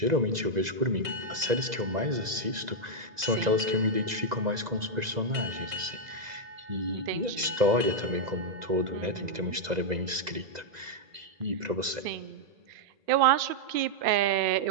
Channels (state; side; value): late; left; 2.0 ms